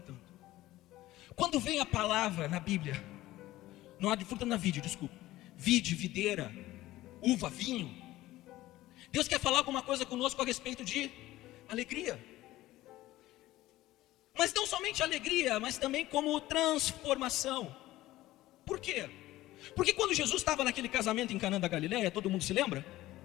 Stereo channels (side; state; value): right; quieter; 16.4 dB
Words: Quando vem a palavra na Bíblia, não há de fruta na vide, desculpa, vide, videira, uva, vinho, Deus quer falar alguma coisa conosco a respeito de alegria. Mas não somente alegria, mas também como transformação. Por quê? Porque quando Jesus estava naquele casamento em Canaã da Galileia, todo mundo se lembra?